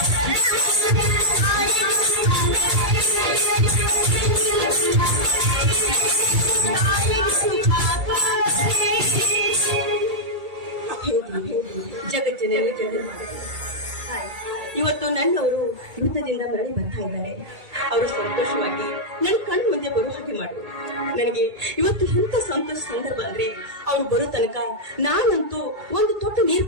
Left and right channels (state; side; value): late; left; 2.3 ms